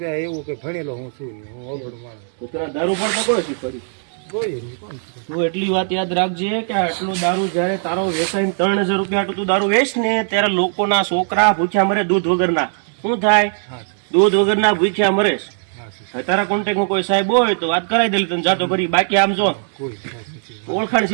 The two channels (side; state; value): left; silent; digital silence